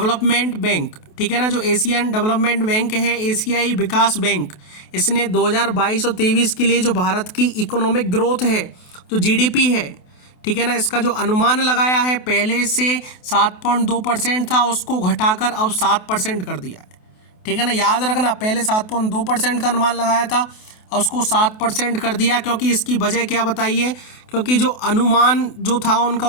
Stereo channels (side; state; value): right; late; 28 ms